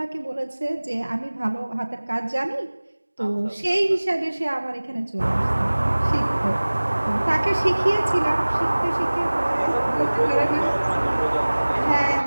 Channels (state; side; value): inverted; both; correlation -1.00